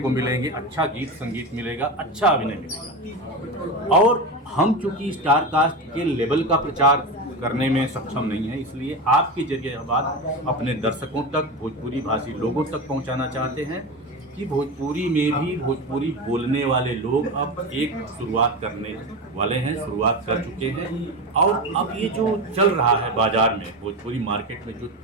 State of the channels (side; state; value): both; normal; correlation 0.21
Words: मिलेंगे, अच्छा गीत संगीत मिलेगा, अच्छा अभिनय मिलेगा। और हम चूंकि स्टार कास्ट के लेवल का प्रचार करने में सक्षम नहीं है, इसलिए आपके जरिए यह बात अपने दर्शकों तक, भोजपुरी भाषी लोगों तक पहुंचाना चाहते हैं कि भोजपुरी में भी भोजपुरी बोलने वाले लोग अब एक शुरुआत करने वाले हैं, शुरुआत कर चुके हैं। और अब ये जो चल रहा है बाजार में, भोजपुरी मार्केट में जो